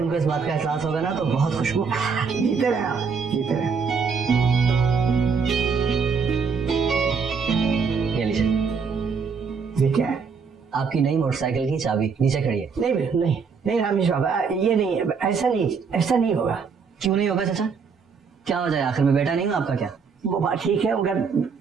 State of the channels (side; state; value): left; quieter; 5.6 dB